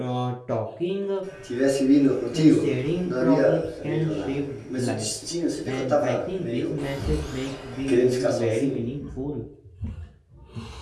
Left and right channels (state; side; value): identical; both; correlation 1.00